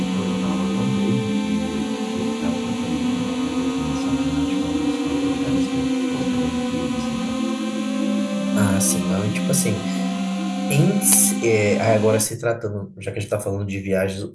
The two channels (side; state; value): both; identical; correlation 1.00